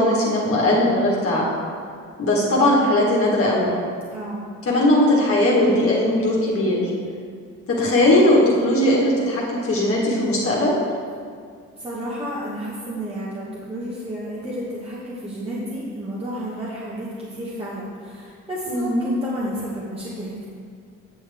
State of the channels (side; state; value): both; normal; correlation 0.31